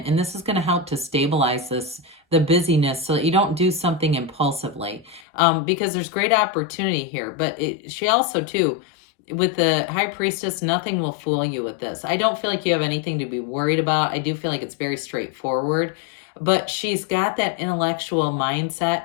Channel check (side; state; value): right; drops out; at 5.2 s